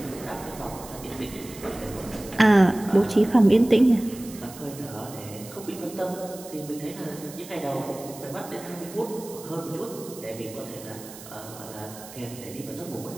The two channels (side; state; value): right; noise; hiss, 16 dB below the sound